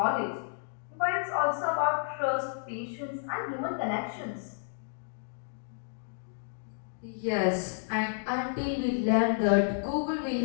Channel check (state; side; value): silent; right; digital silence